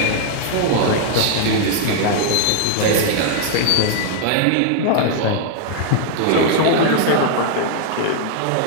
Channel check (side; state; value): both; different; correlation 0.00